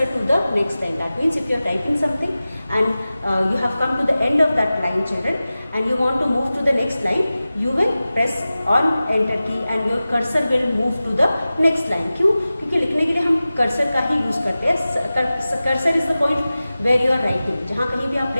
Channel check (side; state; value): both; inverted; correlation -0.96